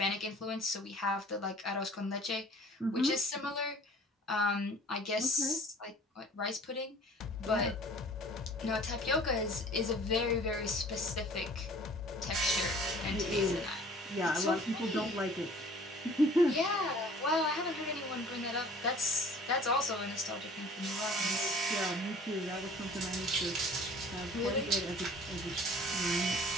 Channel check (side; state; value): both; normal; correlation 0.49